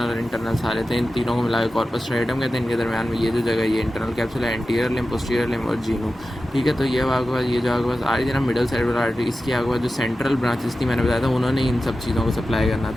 और इंटरनल सारे थे। इन तीनों को मिलाकर कॉर्पस स्ट्राइएटम कहते हैं। इनके दरमियान में ये जो जगह, ये इंटरनल कैप्सूल है, एंटीरियर लिम्ब, पोस्टीरियर लिम्ब और जीनू। ठीक है। तो ये आपके पास ये जो आपके पास आ रही थी ना मिडल सेरिब्रल आर्टरी, इसकी आपके पास जो सेंट्रल ब्रांचेस थी, मैंने बताया था उन्होंने इन सब चीज़ों को सप्लाई करना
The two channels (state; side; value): normal; both; correlation 0.93